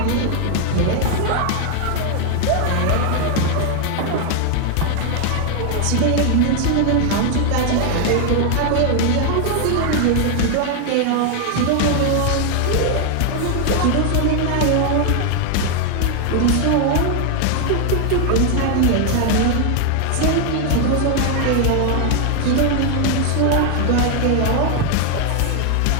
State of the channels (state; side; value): different; both; correlation 0.00